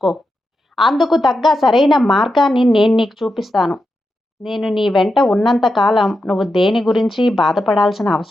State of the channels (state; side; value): normal; both; correlation 0.88